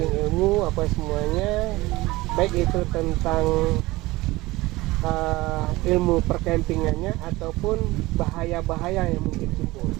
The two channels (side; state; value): left; quieter; 19.9 dB